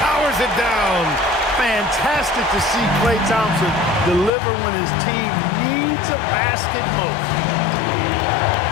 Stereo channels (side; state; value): right; drops out; at 4.3 s